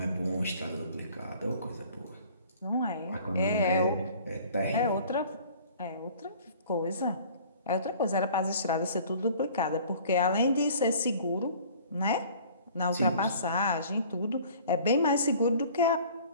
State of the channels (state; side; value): inverted; both; correlation -0.50